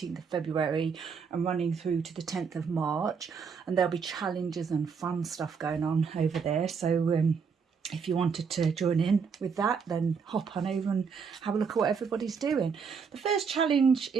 of February and running through to the 10th of March, and there'll be challenges and fun stuff going on over there, so if you wanted to join in with that, then hop on over and have a look at what everybody's doing. The first challenge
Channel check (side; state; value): left; quieter; 5.9 dB